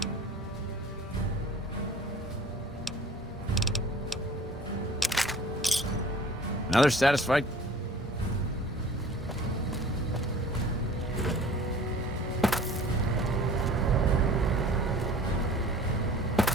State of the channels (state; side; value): normal; both; correlation 0.46